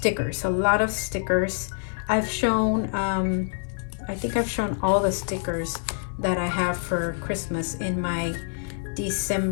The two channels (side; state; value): right; silent; 61 dB below the other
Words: a lot of stickers. I've shown I think I've shown all the stickers that I have for Christmas in my